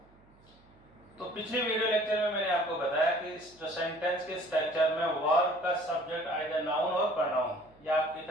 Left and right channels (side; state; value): right; noise; hum, 29 dB below the sound